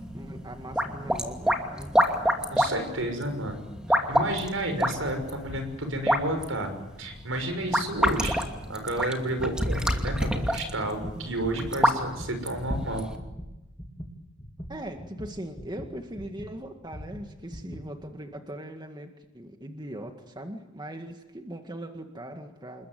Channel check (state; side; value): normal; both; correlation 0.61